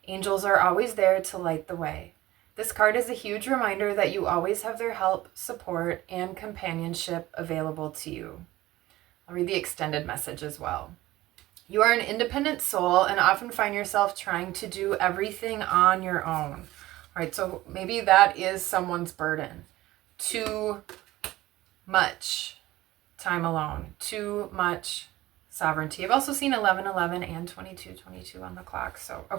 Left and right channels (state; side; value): quieter; left; 16.9 dB